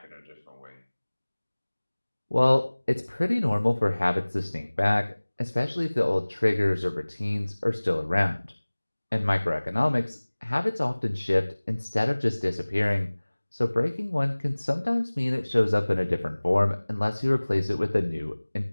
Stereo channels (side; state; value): both; inverted; correlation -1.00